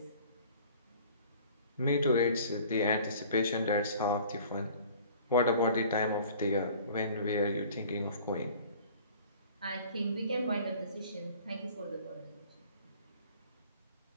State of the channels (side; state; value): both; inverted; correlation -0.48